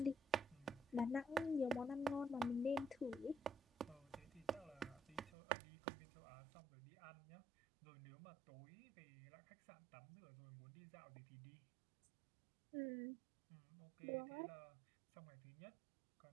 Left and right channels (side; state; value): left; drops out; at 5.3 s